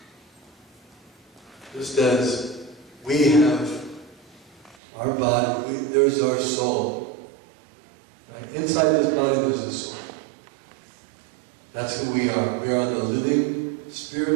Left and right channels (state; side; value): drops out; left; at 4.8 s